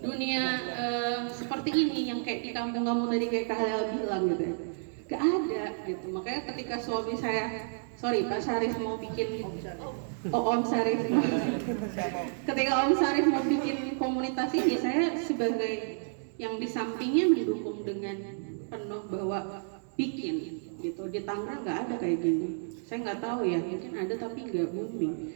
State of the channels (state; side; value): silent; left; digital silence